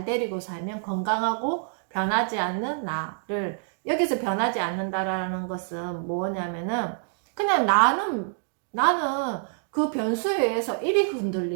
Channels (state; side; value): silent; left; digital silence